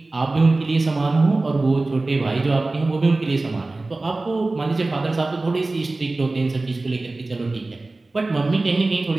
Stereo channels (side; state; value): left; quieter; 3.2 dB